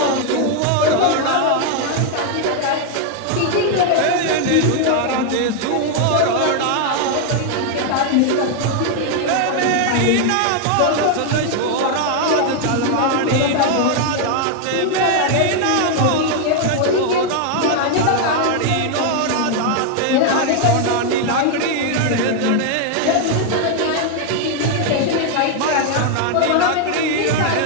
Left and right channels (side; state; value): both; different; correlation 0.00